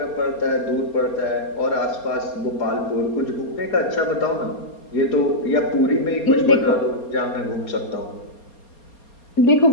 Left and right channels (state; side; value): late; right; 4.3 ms